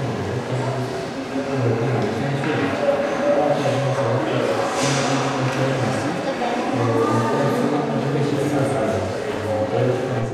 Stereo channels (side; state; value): both; identical; correlation 1.00